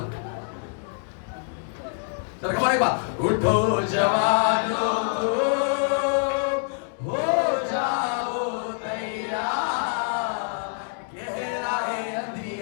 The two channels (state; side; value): silent; right; digital silence